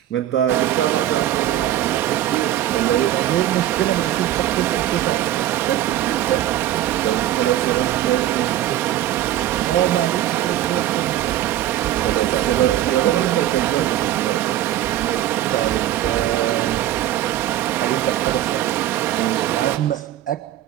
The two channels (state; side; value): quieter; left; 12.9 dB